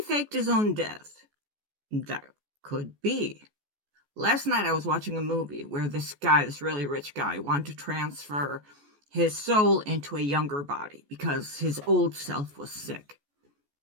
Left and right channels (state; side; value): late; left; 14 ms